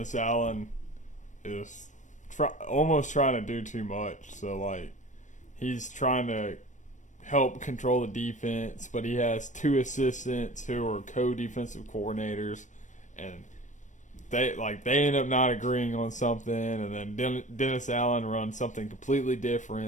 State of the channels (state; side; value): late; right; 0.36 ms